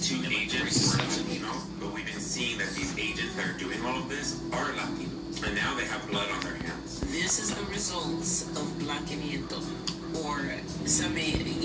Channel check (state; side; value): identical; both; correlation 1.00